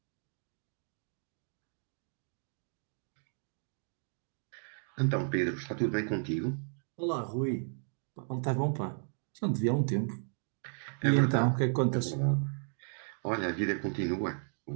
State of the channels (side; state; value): left; silent; 55 dB below the other